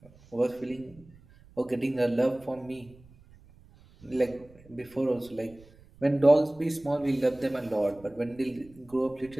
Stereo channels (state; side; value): noise; right; rumble, 25 dB below the sound